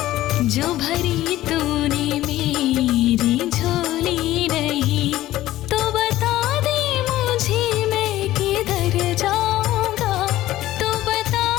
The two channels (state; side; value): quieter; right; 15.2 dB